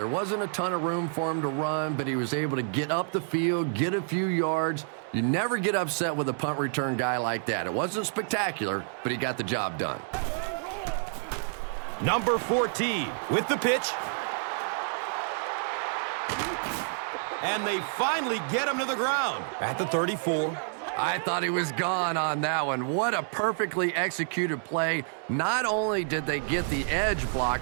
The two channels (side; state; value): left; silent; digital silence